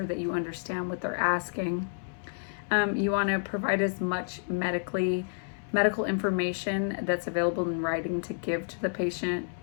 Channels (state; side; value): silent; right; 58 dB below the other